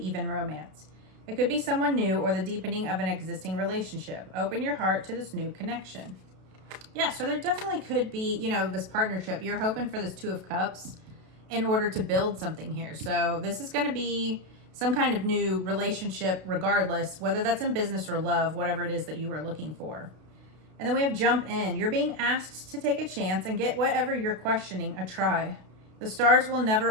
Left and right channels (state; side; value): late; left; 32 ms